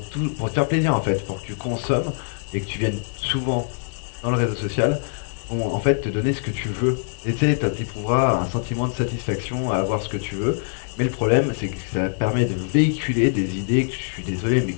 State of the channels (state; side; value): silent; right; digital silence